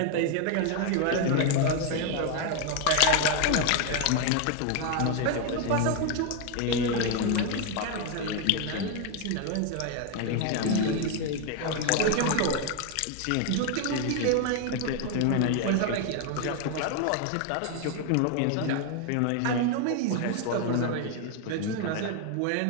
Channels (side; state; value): both; different; correlation 0.01